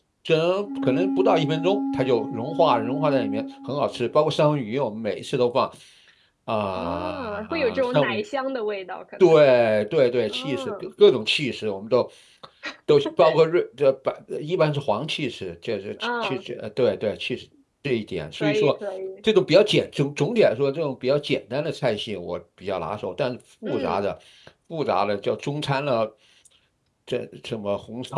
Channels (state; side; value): identical; both; correlation 1.00